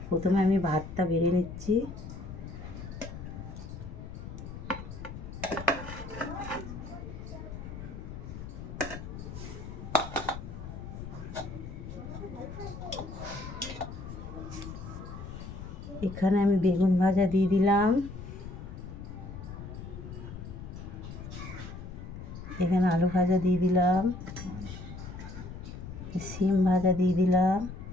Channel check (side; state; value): left; noise; rumble, 10 dB below the sound